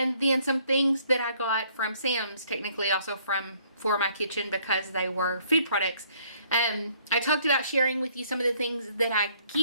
then some things that I got from Sam's, technically also for my kitchen because they were food products. I talked about sharing with you some of the things that I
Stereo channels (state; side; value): inverted; both; correlation -0.63